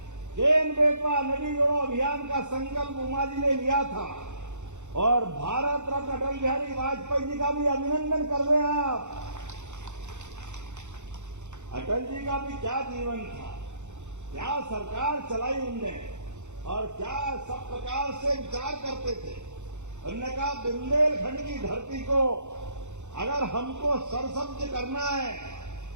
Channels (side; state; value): left; late; 0.84 ms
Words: केन बेतवा नदी जोड़ो अभियान का संकल्प उमा जी ने लिया था, और भारत रत्न अटल बिहारी वाजपेयी जी का भी अभिनंदन कर रहे हैं आप। अटल जी का भी क्या जीवन था, क्या सरकार चलाई उनने, और क्या सब प्रकार से विचार करते थे। उन्होंने कहा बुंदेलखंड की धरती को अगर हमको सरसब्ज करना है,